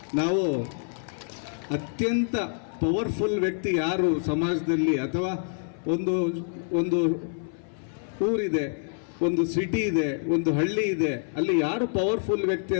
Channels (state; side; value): silent; right; 57 dB below the other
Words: ನಾವು ಅತ್ಯಂತ ಪವರ್ಫುಲ್ ವ್ಯಕ್ತಿ ಯಾರು ಸಮಾಜದಲ್ಲಿ, ಅಥವಾ ಒಂದು ಊರಿದೆ, ಒಂದು ಸಿಟಿ ಇದೆ, ಒಂದು ಹಳ್ಳಿ ಇದೆ, ಅಲ್ಲಿ ಯಾರು ಪವರ್ಫುಲ್ ವ್ಯಕ್ತಿ